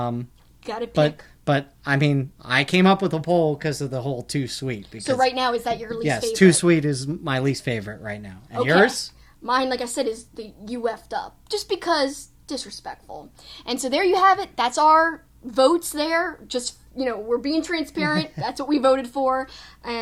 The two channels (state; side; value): identical; both; correlation 1.00